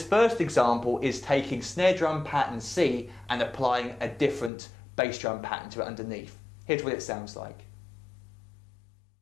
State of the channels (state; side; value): drops out; right; at 4.5 s